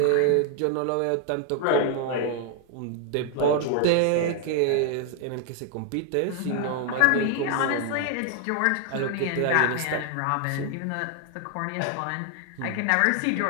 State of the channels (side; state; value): both; different; correlation 0.00